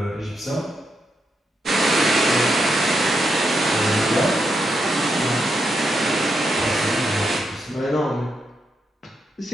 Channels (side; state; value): both; normal; correlation 0.82